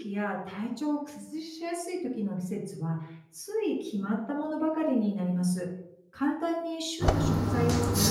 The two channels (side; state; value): both; identical; correlation 1.00